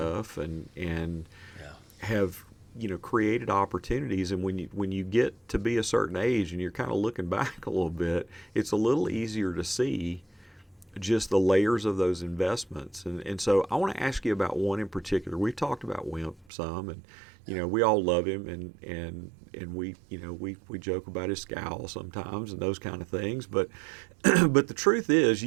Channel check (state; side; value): drops out; left; at 16.4 s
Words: and have created opportunities. And when you get to be a certain age and you're kind of looking back a little bit, it's a little easier to see just the layers of those investments. And so I want to ask you about one in particular. We've talked about Wimp some, and we all love him, and we joke about his scowl sometimes and those kind of things. But but the truth is,